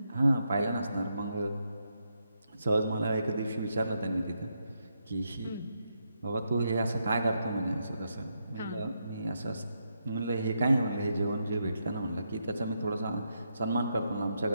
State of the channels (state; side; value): inverted; both; correlation -0.81